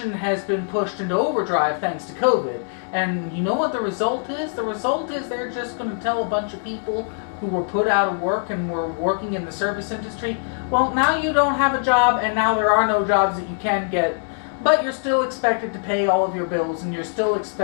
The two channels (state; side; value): silent; right; digital silence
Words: has been pushed into overdrive thanks to COVID. And you know what the result is? The result is they're just going to tell a bunch of people who were put out of work and were working in the service industry, well, now you don't have a job and now there are no jobs that you can get, but you're still expected to pay all of your bills and you're still